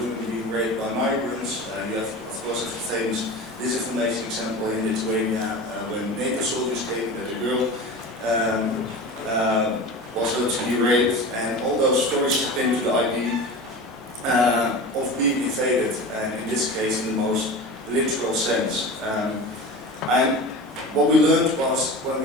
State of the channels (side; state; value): both; normal; correlation 0.32